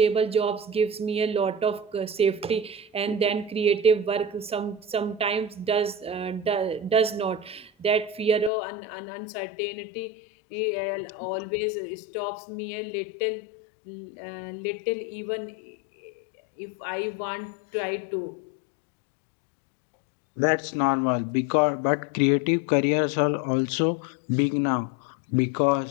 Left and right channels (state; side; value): drops out; right; at 8.5 s